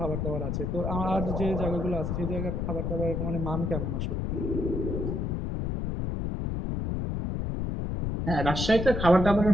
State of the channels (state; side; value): noise; left; rumble, 1 dB below the sound